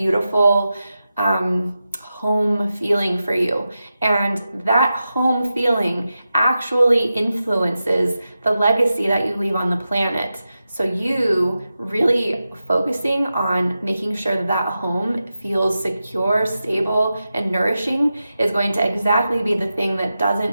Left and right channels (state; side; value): inverted; both; correlation -0.91